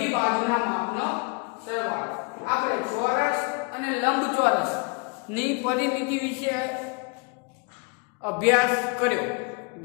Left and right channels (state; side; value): quieter; right; 32.7 dB